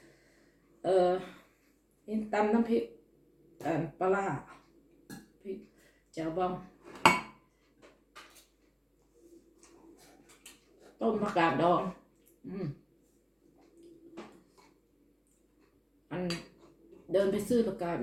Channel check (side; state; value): both; identical; correlation 1.00